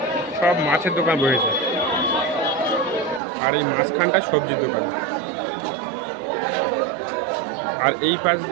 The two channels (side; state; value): left; drops out; at 3.2 s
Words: সব মাছের দোকান বসেছে। আর এই মাঝখানটা সবজির দোকান। আর এই পাশ